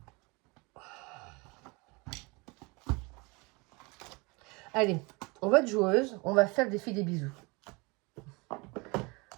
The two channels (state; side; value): quieter; left; 27.1 dB